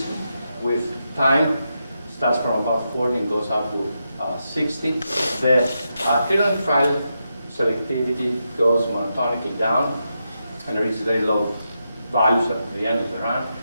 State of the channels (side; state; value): both; inverted; correlation -0.85